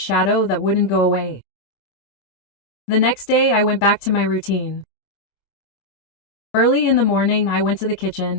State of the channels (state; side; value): late; right; 25 ms